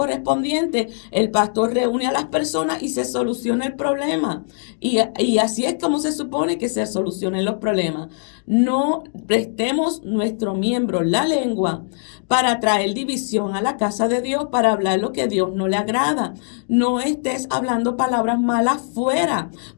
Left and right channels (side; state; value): right; silent; digital silence